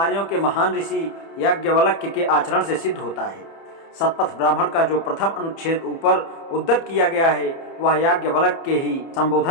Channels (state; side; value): late; right; 30 ms